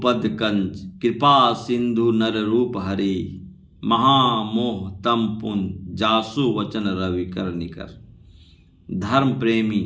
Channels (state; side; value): identical; both; correlation 1.00